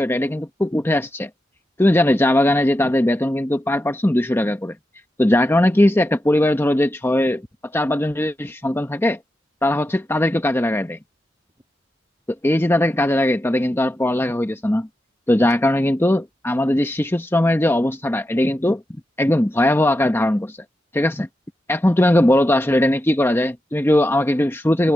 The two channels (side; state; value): both; normal; correlation 0.88